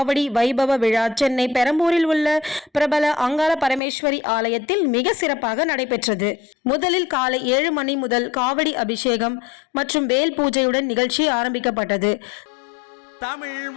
வைபவ விழா சென்னை பெரம்பூரில் உள்ள பிரபல அங்காள பரமேஸ்வரி ஆலயத்தில் மிக சிறப்பாக நடைபெற்றது. முதலில் காலை 7 மணி முதல் காவடி அபிஷேகம் மற்றும் வேல் பூஜையுடன் நிகழ்ச்சி ஆரம்பிக்கப்பட்டது. தமிழ்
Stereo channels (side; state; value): right; drops out; at 3.8 s